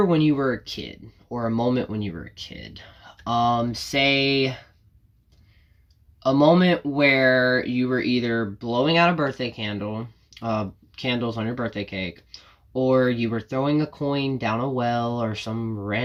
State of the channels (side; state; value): both; identical; correlation 1.00